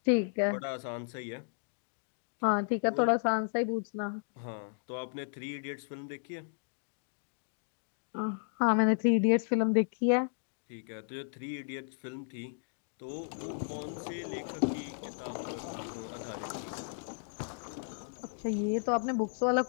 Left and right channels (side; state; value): right; silent; digital silence